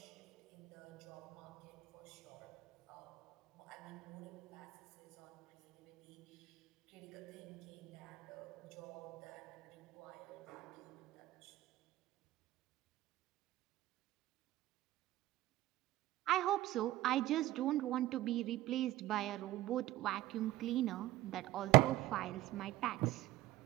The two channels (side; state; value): left; quieter; 16.3 dB